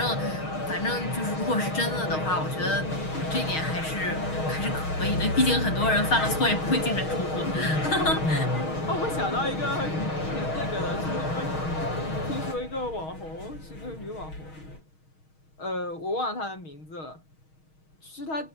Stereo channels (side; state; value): right; late; 6.4 ms